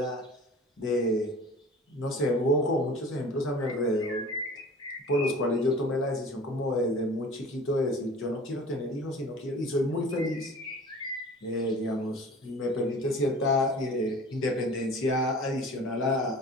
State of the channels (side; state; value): both; normal; correlation 0.42